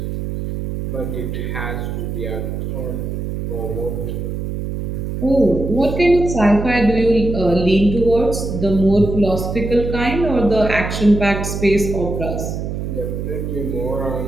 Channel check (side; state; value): right; noise; hum, 4 dB below the sound